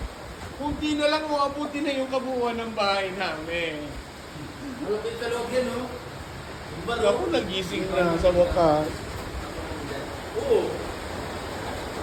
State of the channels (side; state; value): both; identical; correlation 1.00